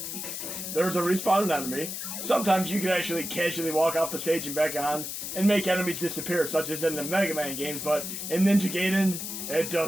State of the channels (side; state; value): left; noise; hiss, 6 dB below the sound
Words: There's a respawn enemy. Sometimes you can actually casually walk off the stage and back on and make enemies disappear, such as in the Mega Man games, but in Ninja Gaiden, it